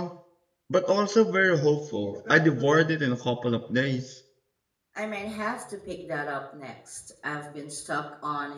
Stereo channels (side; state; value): both; identical; correlation 1.00